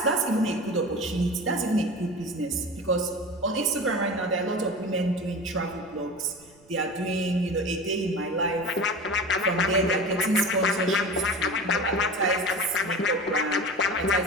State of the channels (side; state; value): right; noise; rumble, 29 dB below the sound